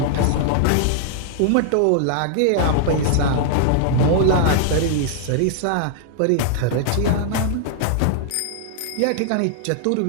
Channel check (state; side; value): different; both; correlation -0.01